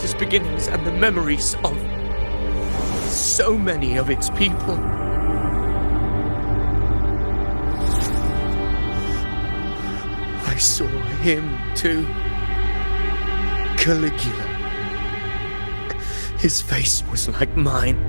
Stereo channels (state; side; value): inverted; both; correlation -1.00